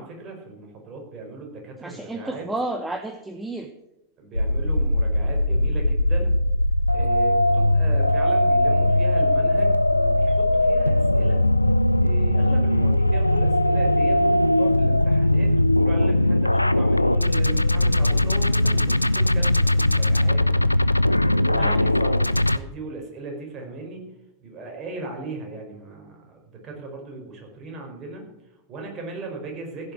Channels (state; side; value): inverted; both; correlation -0.92